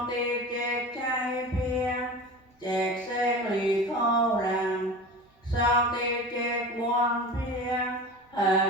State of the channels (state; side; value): normal; both; correlation 0.33